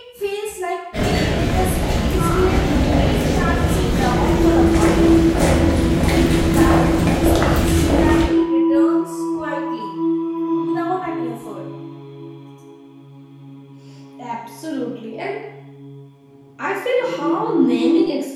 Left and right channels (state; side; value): identical; both; correlation 1.00